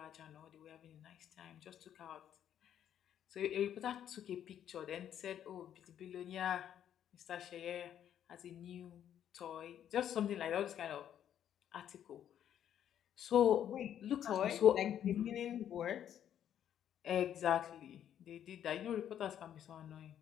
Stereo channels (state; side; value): quieter; right; 10.1 dB